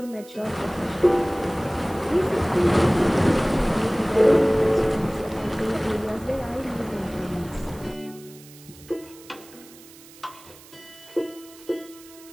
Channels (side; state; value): right; noise; hiss, 22 dB below the sound